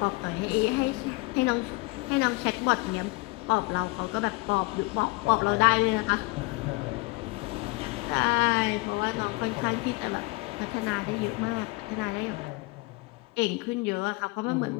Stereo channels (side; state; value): right; quieter; 25.3 dB